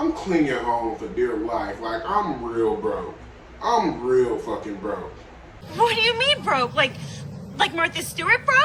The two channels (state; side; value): identical; both; correlation 1.00